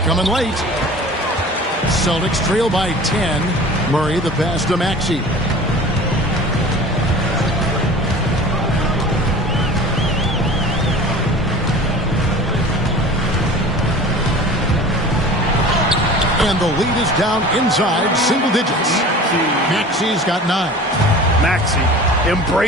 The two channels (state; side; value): normal; both; correlation 0.40